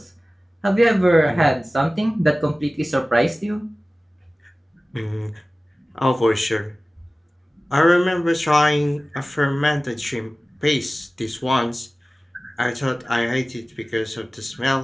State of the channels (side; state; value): both; normal; correlation 0.97